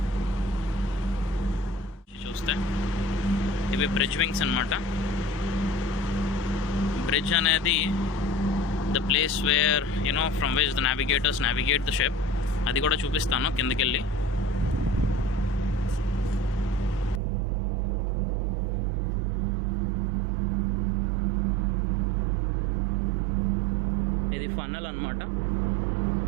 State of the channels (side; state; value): left; drops out; at 17.2 s